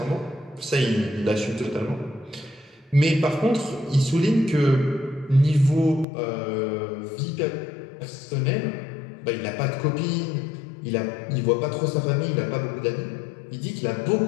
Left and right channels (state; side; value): drops out; right; at 6.1 s